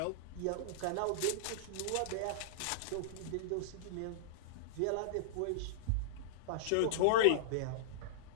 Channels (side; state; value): both; different; correlation -0.02